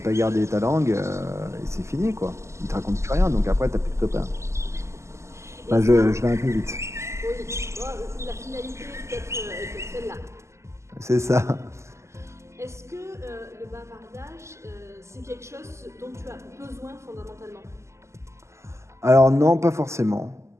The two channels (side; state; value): left; late; 0.13 ms